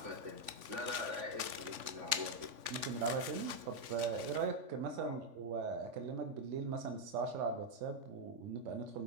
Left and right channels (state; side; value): late; left; 3.5 ms